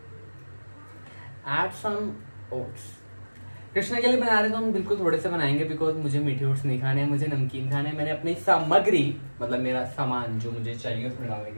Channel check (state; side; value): inverted; both; correlation -1.00